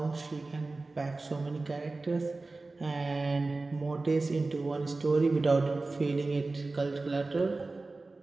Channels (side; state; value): left; quieter; 3.4 dB